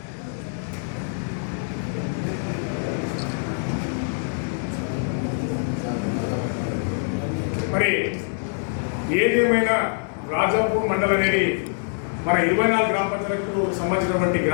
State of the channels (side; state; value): right; silent; 62 dB below the other